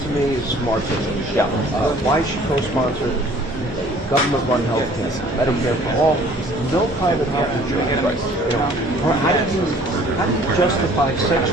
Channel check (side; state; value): both; normal; correlation 0.54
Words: me is smart business. Why she co-sponsored government-run health care, Medicare for all, no private health insurance. Right. You know, how do you justify sex